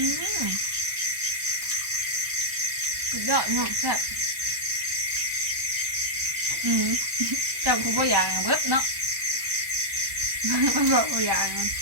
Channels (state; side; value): late; left; 1.1 ms